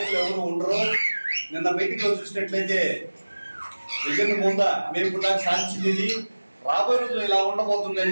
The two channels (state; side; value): inverted; both; correlation -1.00